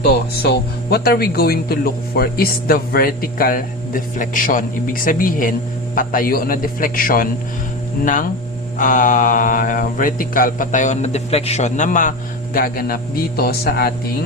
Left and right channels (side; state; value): both; normal; correlation 0.25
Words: So what are we going to look for is the vertical deflection. Ibig sabihin, patayo na deflection ng vertical, patayo na deflection na magaganap dito sa